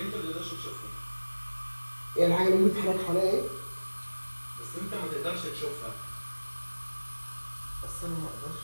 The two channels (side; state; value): both; inverted; correlation -1.00